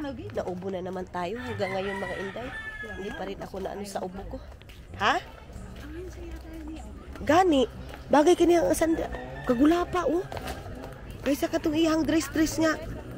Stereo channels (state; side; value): identical; both; correlation 1.00